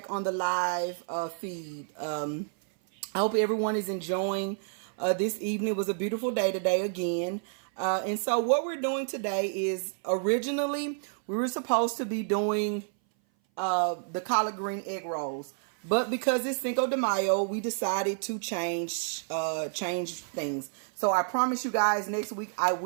on the live feed. I hope everyone is enjoying this evening. It was a beautiful day today again. And so what we're doing today is originally we were supposed to be doing the collard green egg rolls. But because it's Cinco de Mayo, we decided to change things. So I promise you guys next week I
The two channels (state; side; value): silent; left; 57 dB below the other